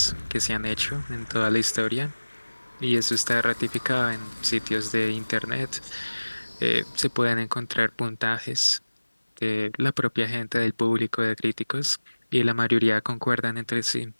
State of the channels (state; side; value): inverted; both; correlation -1.00